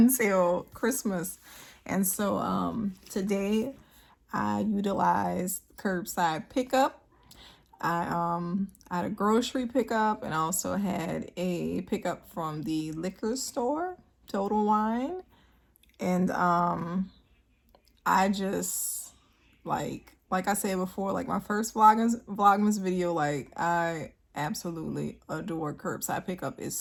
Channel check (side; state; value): both; identical; correlation 1.00